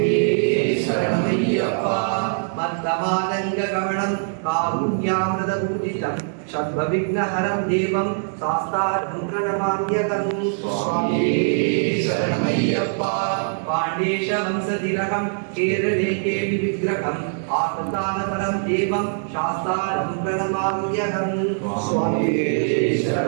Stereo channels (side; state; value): left; silent; digital silence